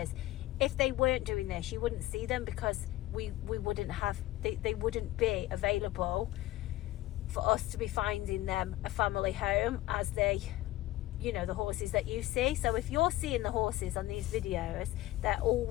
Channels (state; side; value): quieter; right; 16.5 dB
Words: if they weren't doing this, you wouldn't see them, because we wouldn't have, they wouldn't be available for us to be finding them a family home as they, you know, the horses that you see. So if you're seeing the horses on these videos, they're